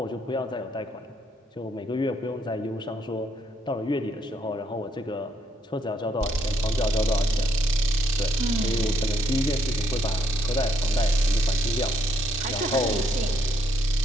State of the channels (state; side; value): normal; both; correlation 0.73